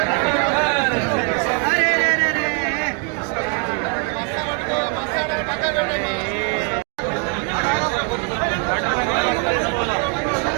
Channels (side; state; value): left; quieter; 36.2 dB